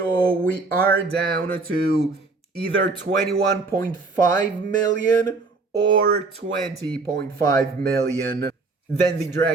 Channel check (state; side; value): quieter; left; 3.8 dB